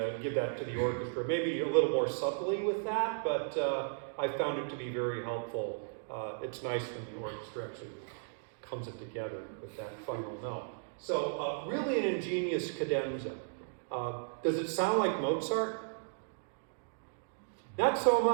Give that to the orchestra. Maybe a little more subtly with that, but I found it to be very helpful. It's nice when the orchestra actually comes it together with that final note. So really an ingenious cadenza. Does it sound like Mozart? Not so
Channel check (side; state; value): left; silent; digital silence